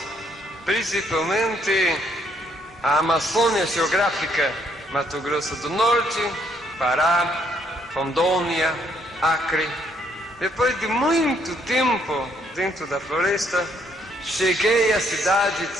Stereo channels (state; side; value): normal; both; correlation 0.70